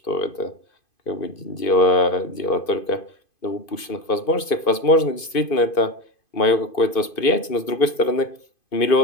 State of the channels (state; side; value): late; right; 2.5 ms